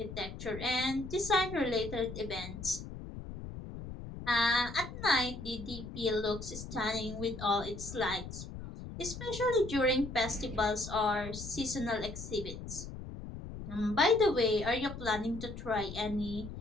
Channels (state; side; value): noise; left; rumble, 10 dB below the sound